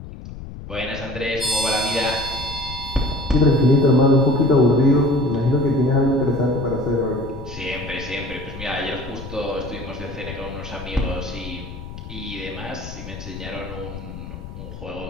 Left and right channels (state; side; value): noise; left; rumble, 12 dB below the sound